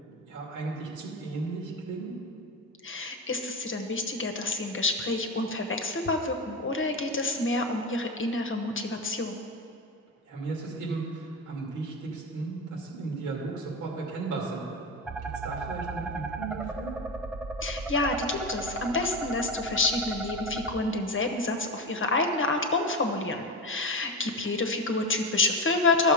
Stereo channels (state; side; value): normal; both; correlation 0.19